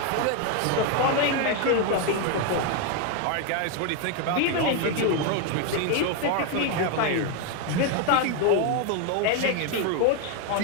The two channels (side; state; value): both; different; correlation 0.01